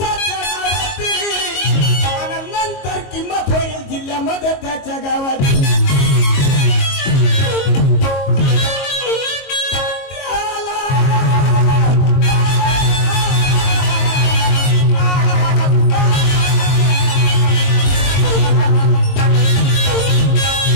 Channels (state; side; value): late; right; 22 ms